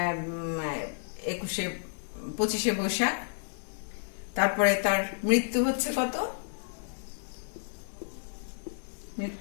25শে বৈশাখ। তারপরে তার মৃত্যু হচ্ছে কত,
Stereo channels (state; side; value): silent; right; 57 dB below the other